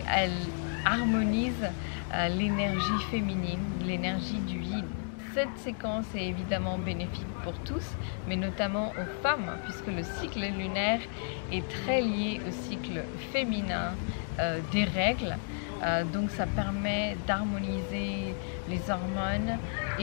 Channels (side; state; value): right; silent; 56 dB below the other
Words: elle harmonise l'énergie féminine, l'énergie du yin. Cette séquence est évidemment bénéfique pour tous, mais notamment aux femmes, puisque le cycle lunaire est très lié au cycle féminin des règles. Donc ça permet d'harmoniser les hormones